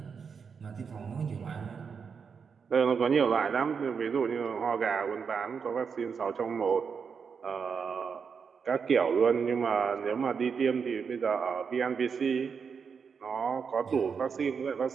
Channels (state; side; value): quieter; left; 6.1 dB